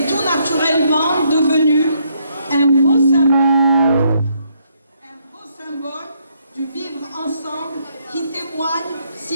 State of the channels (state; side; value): inverted; both; correlation -0.73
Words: tout naturellement devenu un beau symbole du vivre ensemble qui témoigne,